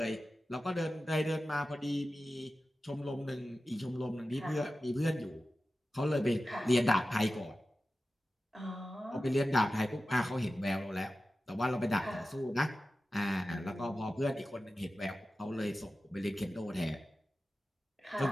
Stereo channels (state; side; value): normal; both; correlation 0.94